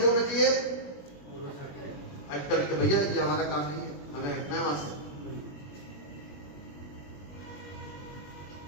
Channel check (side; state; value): right; late; 21 ms